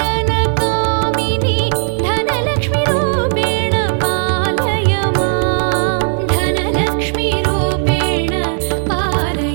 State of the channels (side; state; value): left; silent; digital silence